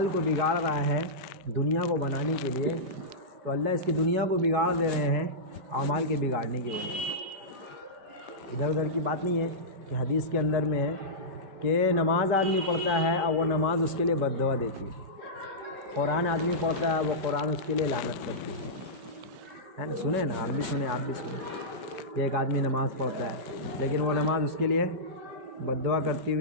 کو بگاڑ رہا ہے دنیا کو بنانے کے لیے، تو اللہ اس کی دنیا کو بگاڑ دے رہے ہیں اعمال کے بگاڑنے کی وجہ سے۔ ادھر ادھر کی بات نہیں ہے، کہ حدیث کے اندر میں ہے کہ نماز آدمی پڑھتا ہے اور وہ نماز اس کے لیے بد دعا دیتی ہے، قرآن آدمی پڑھتا ہے وہ قرآن اس کے لیے لعنت کرتی ہے نا؟ سنیں نا، آپ بھی سنیں، آپ بھی سنیں کہ ایک آدمی نماز پڑھتا ہے لیکن وہ نماز اس کے لیے بد دعا کرتی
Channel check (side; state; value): left; late; 5.2 ms